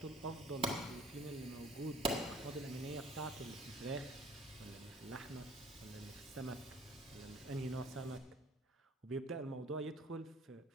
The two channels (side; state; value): both; normal; correlation 0.52